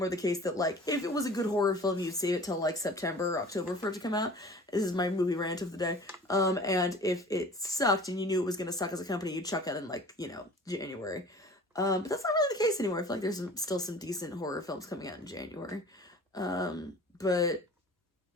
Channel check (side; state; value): both; normal; correlation 0.44